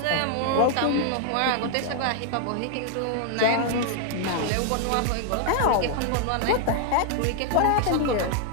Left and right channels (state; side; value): different; both; correlation 0.00